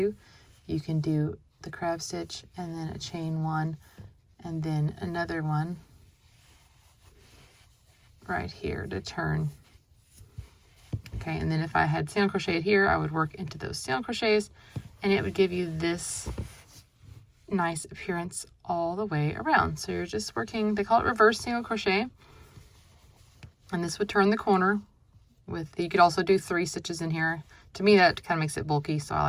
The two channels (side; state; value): both; identical; correlation 1.00